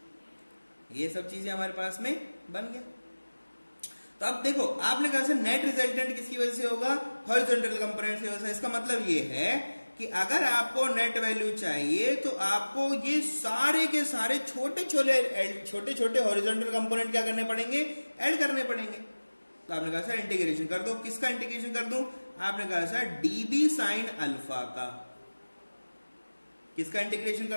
ये सब चीजें हमारे पास में बन गया। तो अब देखो आपने कहा सर नेट रिजल्टेंट किसकी वजह से होगा, हॉरिजॉन्टल कंपोनेंट की वजह से। इसका मतलब ये है कि अगर आपको नेट वैल्यू चाहिए तो आपको ये सारे के सारे छोटे छोटे हॉरिजॉन्टल कंपोनेंट क्या करने पड़ेंगे, ऐड करने पड़ेंगे। तो आपने कहा सर इंटीग्रेशन कर दो। किसका इंटीग्रेशन कर दूं? आपने कहा सर डीबी साइन अल्फा का। किसका इंटीग्रेशन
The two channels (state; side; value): inverted; both; correlation -1.00